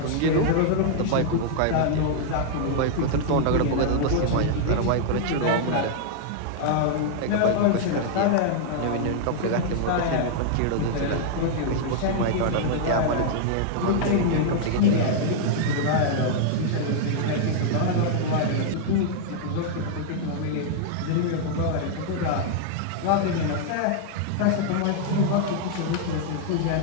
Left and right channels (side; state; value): both; different; correlation -0.01